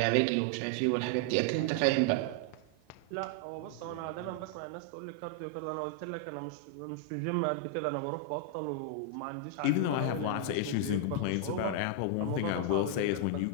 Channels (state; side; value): different; both; correlation 0.00